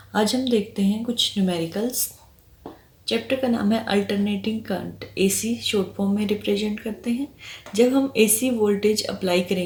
आज हम देखते हैं कुछ न्यूमेरिकल्स। चैप्टर का नाम है alternating current. AC short form में रिप्रेजेंट करते हैं। जब हम एसी वोल्टेज अप्लाई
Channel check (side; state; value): both; identical; correlation 1.00